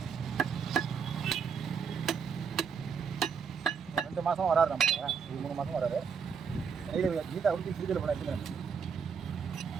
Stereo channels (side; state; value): left; quieter; 6.3 dB